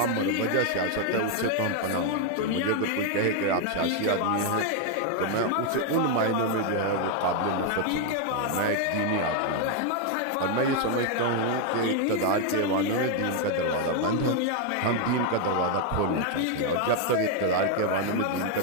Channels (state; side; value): different; both; correlation 0.01